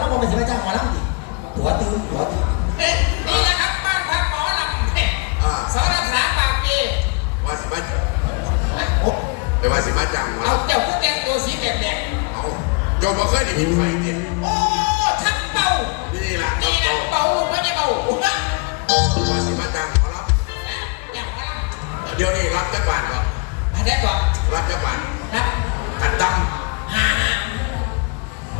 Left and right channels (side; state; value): right; quieter; 33.1 dB